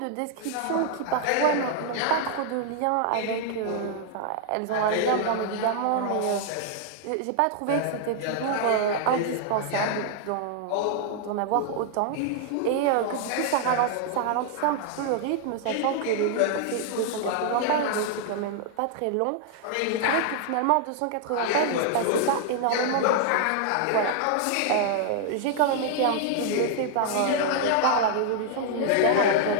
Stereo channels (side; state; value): both; different; correlation 0.00